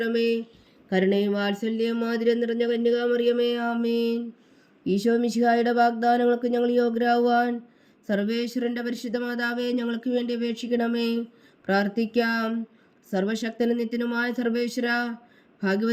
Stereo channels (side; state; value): both; identical; correlation 1.00